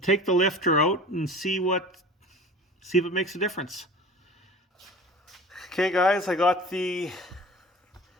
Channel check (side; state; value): both; normal; correlation 0.40